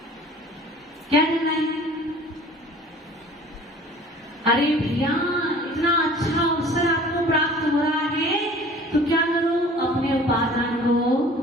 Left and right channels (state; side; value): normal; both; correlation 0.47